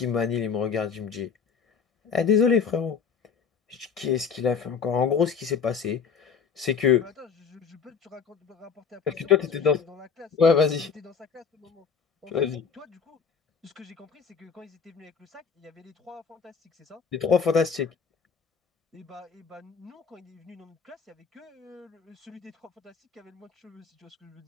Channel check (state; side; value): quieter; right; 6.1 dB